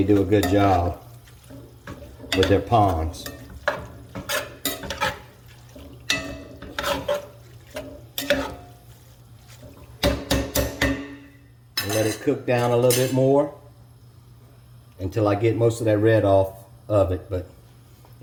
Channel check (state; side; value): identical; both; correlation 1.00